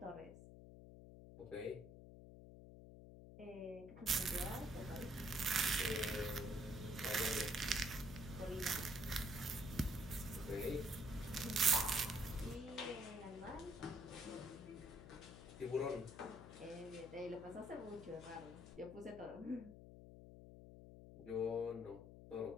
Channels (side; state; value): left; noise; hum, 14 dB below the sound